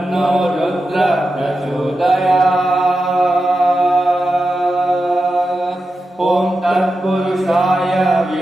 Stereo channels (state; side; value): normal; both; correlation 0.91